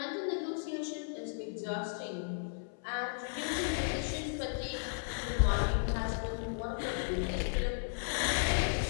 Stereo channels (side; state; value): right; silent; 54 dB below the other